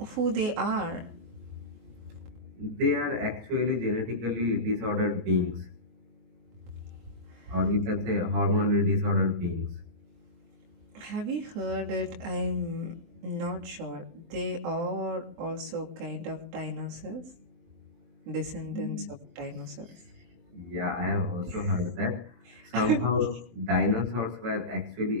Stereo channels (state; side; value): late; left; 23 ms